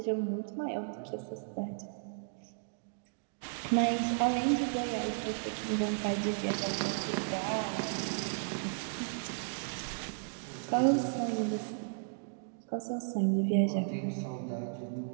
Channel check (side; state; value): left; silent; digital silence